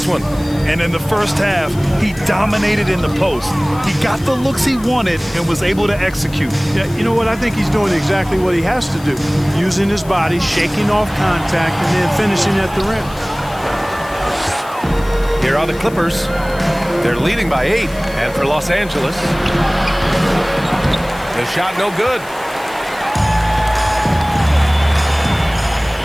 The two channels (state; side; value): noise; left; hiss, 20 dB below the sound